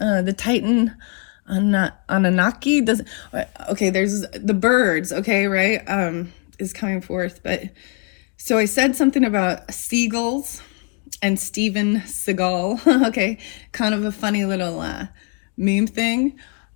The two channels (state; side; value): quieter; right; 36.7 dB